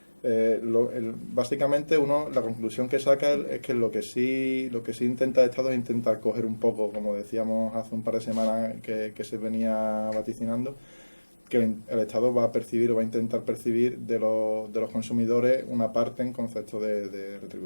Básicamente la conclusión que saca es que lo que sí intenta el Estado es intentar coger un poco, como decíamos hace un par de semanas que se venía vaticinando, que el Estado va a percibir o va a intentar percibir de los consumidores una parte en concepto de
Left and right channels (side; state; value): both; inverted; correlation -1.00